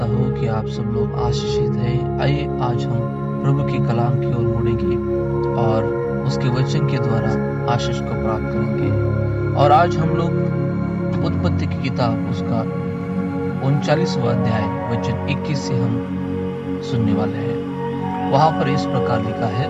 हूँ कि आप सब लोग आशीषित हैं। आइए आज हम प्रभु के कलाम की ओर मुड़ेंगे और उसके वचन के द्वारा आशीष को प्राप्त करेंगे। और आज हम लोग उत्पत्ति की किताब उसका 39वां अध्याय वचन 21 से हम सुनने वाले हैं। वहां पर इस प्रकार लिखा है,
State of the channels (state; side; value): identical; both; correlation 1.00